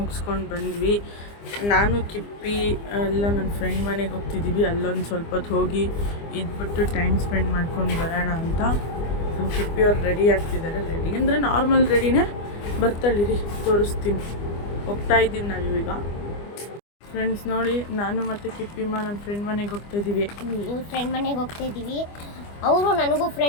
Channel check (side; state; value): right; late; 25 ms